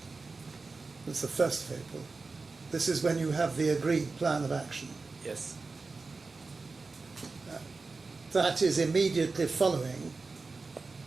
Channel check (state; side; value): quieter; left; 4.0 dB